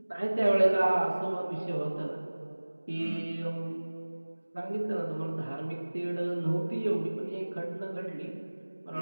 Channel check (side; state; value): both; inverted; correlation -1.00